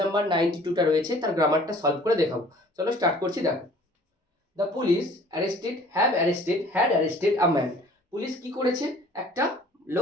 নাম্বার 92টা রয়েছে তার গ্রামারটা সলভ করে দেখাবো। চলো স্টার্ট করছি। দেখো, the police had arrested a man. Police কি করেছে? একটা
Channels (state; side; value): normal; both; correlation 0.51